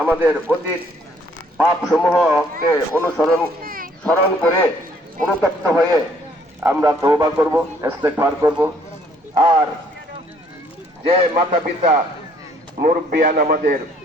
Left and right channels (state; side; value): normal; both; correlation 0.63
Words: আমাদের অতীত পাপ সমূহকে স্মরণ করে অনুতপ্ত হয়ে আমরা তওবা করব, ইস্তেগফার করব। আর যে মাতা পিতা মুরব্বিয়ান আমাদের